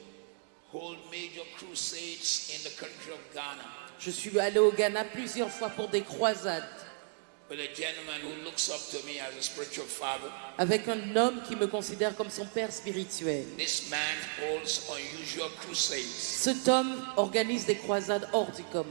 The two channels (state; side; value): silent; left; 55 dB below the other